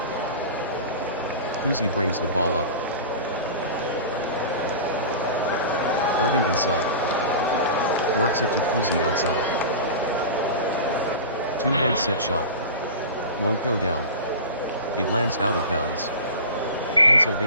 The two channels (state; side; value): inverted; both; correlation -0.32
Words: Cousy brings the ball up. Irving inside. Works it to Cousy outside. Two-hand set shot. Won't go down. It lands out of bounds.